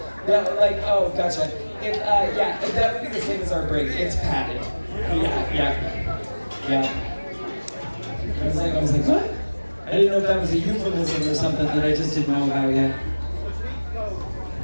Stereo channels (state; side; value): inverted; both; correlation -1.00